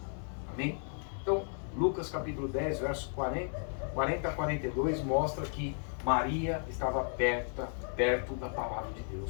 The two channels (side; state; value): right; silent; 55 dB below the other